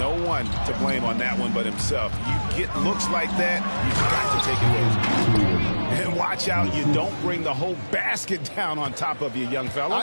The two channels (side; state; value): both; inverted; correlation -1.00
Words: one to blame on that one but himself. You get looks like that, you've got to take advantage. And watch out, you don't bring the whole basket down on top of you, young fella.